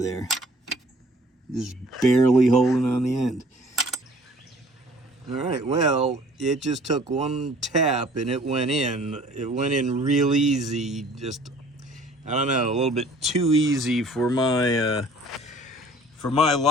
Just barely holding on the end. All right, well, it just took one tap and it went in. It went in real easy. Just, I don't know, a little bit too easy for my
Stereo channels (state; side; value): normal; both; correlation 0.53